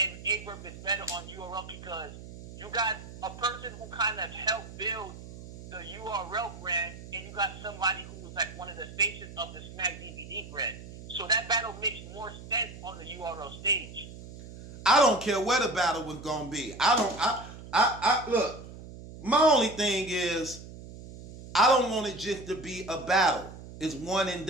and Verb is better on URL because you got a person who kind of helped build the URL brand, and you got somebody who was like one of the faces of the Smack DVD brand. So that battle makes more sense on the URL stage. I don't care where the battle was gonna be. I look, my only thing is I don't want it just to be a battle. It's one and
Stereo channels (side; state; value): right; noise; hum, 14 dB below the sound